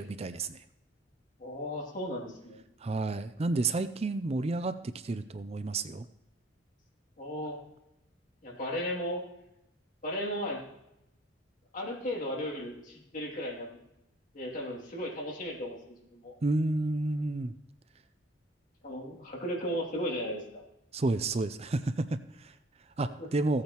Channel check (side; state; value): both; normal; correlation 0.53